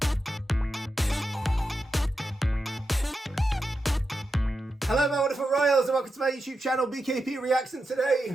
Hello my wonderful royals and welcome to my YouTube channel BKP Reaction.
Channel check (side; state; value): both; normal; correlation 0.89